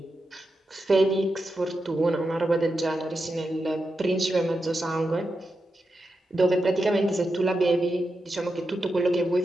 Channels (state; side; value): normal; both; correlation 0.88